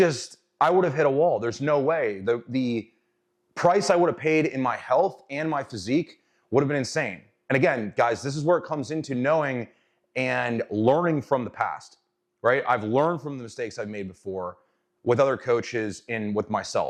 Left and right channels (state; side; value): identical; both; correlation 1.00